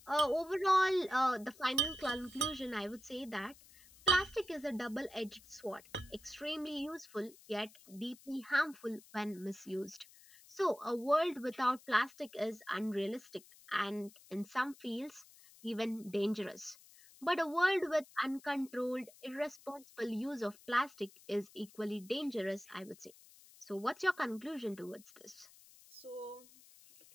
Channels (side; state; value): left; noise; hiss, 23 dB below the sound